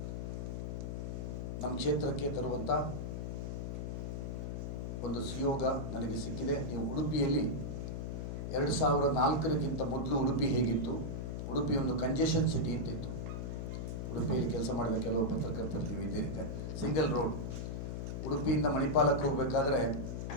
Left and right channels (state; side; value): noise; left; hum, 4 dB below the sound